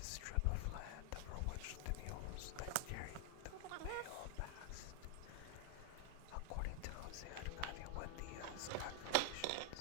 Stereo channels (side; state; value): both; different; correlation 0.00